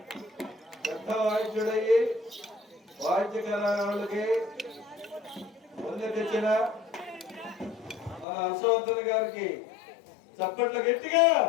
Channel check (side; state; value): right; drops out; at 8.2 s